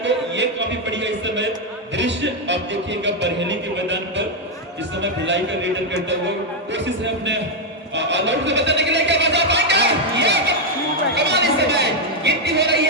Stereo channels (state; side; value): normal; both; correlation 0.01